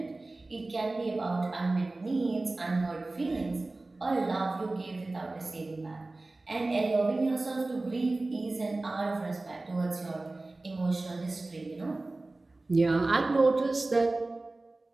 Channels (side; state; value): left; quieter; 3.1 dB